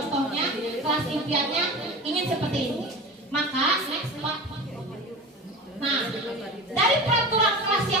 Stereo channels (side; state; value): both; normal; correlation 0.31